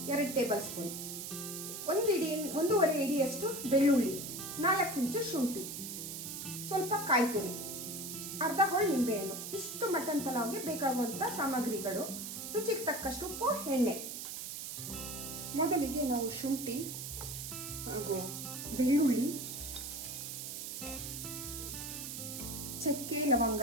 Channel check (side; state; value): right; noise; hiss, 7 dB below the sound